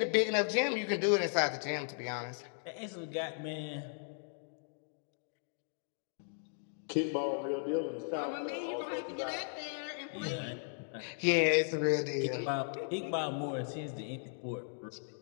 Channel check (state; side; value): silent; right; digital silence